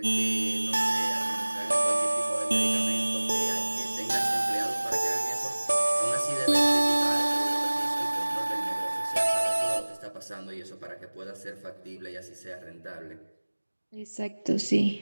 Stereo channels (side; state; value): both; inverted; correlation -1.00